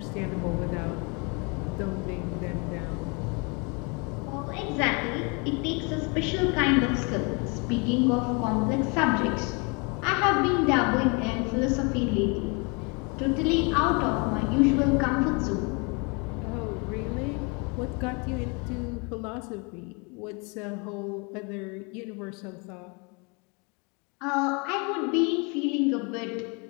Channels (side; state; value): right; quieter; 31.7 dB